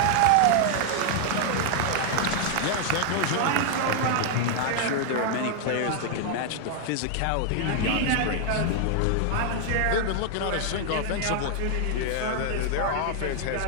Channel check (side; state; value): both; different; correlation 0.00